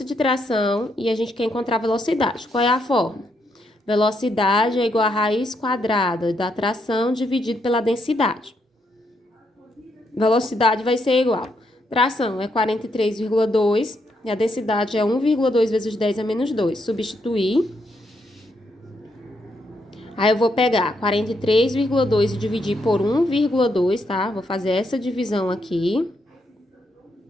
de tração e a gente quer encontrar a velocidade. Qual é a fórmula? Velocidade é igual a raiz quadrada da tração dividido pela densidade. Velocidade vai ser igual. Tração é 43,2 e a densidade é 1,2 vezes 10 a menos 2. Substituir. Aí eu vou pegar 43,2 e dividir por 1,2, tá? Vou fazer essa divisão aqui.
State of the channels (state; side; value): normal; both; correlation 0.78